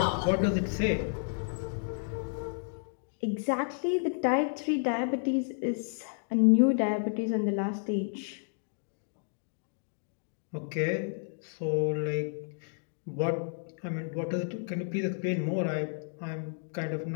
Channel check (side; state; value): right; silent; digital silence